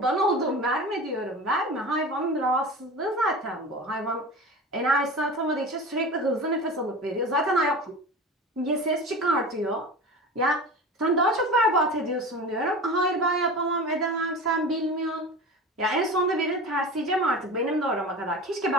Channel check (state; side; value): normal; both; correlation 0.32